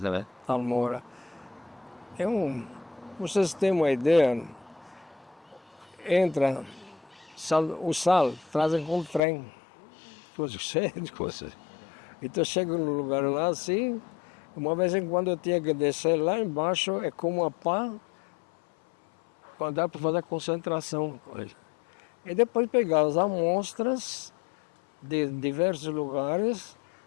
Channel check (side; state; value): right; drops out; at 9.2 s